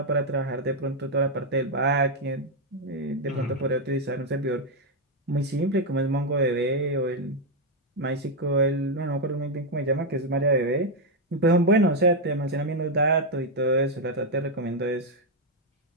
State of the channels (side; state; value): both; normal; correlation 0.01